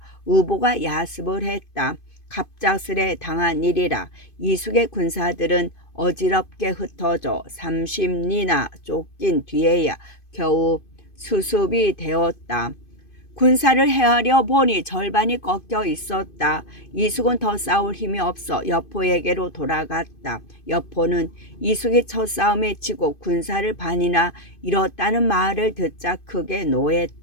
우보가 야습을 했다. 갑작스레 당한 일이라 이숙의 군사들은 어지럽게 흩어져 30리나 쫓긴 뒤에야 겨우 수습이 되었다. 군사를 헤아려 보니 절반이 꺾여 있었다. 이숙은 더 싸울 힘이 없어 여포에게로 돌아갔다. 여포는 이숙이 첫 싸움에 지고 군사를 반이나 잃었다는 말을 듣자 크게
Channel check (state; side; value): late; right; 2.5 ms